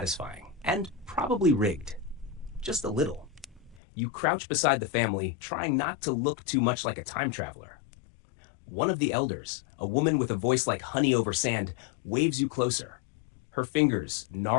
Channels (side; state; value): right; drops out; at 3.8 s